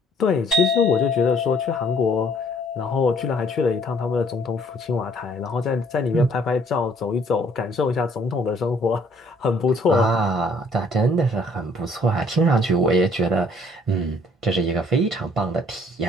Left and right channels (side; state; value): both; normal; correlation 0.60